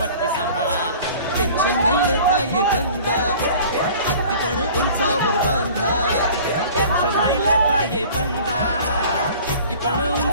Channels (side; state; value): both; inverted; correlation -0.45